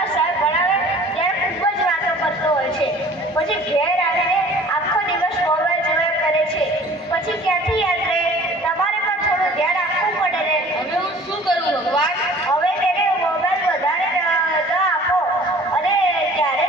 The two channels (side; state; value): both; normal; correlation 0.48